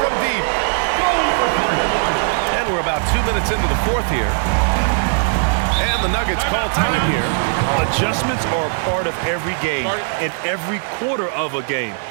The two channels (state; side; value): silent; left; digital silence